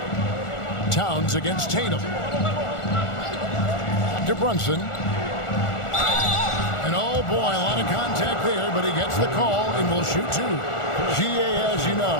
Towns against Tatum. To Brunson. And oh boy, a lot of contact there, but he gets the call and will shoot 2. GA, as you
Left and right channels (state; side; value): late; right; 1.4 ms